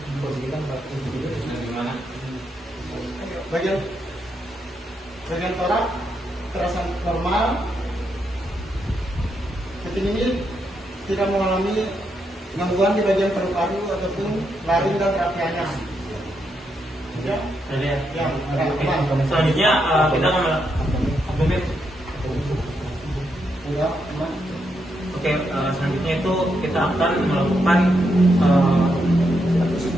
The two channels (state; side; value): normal; both; correlation 0.81